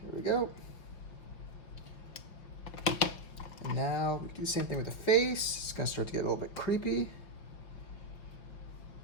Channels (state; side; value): late; right; 5.2 ms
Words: Here we go. And now we do the same thing with the face. It's gonna start to get a little bit creepy.